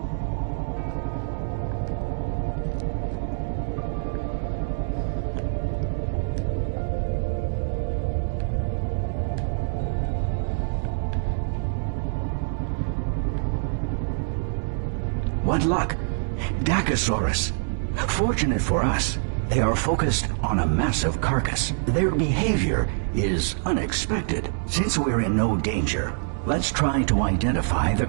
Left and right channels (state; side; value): silent; left; 62 dB below the other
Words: What luck! Dacosaurus. Fortunate for us, they are focused on a massive carcass. Their behavior is unexpected. Since we're in no danger, let's try to identify the